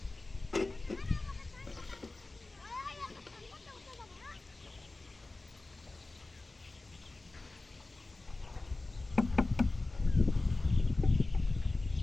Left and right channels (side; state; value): right; quieter; 3.2 dB